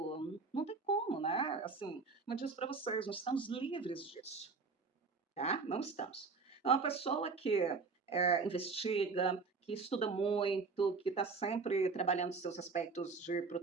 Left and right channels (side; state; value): left; quieter; 4.5 dB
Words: não tem como, né? Assim, eu disse para vocês, nós estamos livres disso, tá? Não estamos. É uma pessoa que investiga, que estuda muito, que está sempre trabalhando seus aspectos de